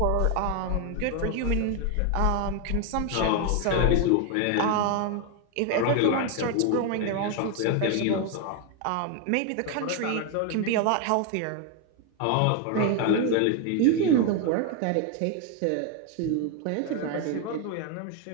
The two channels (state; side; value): different; both; correlation 0.01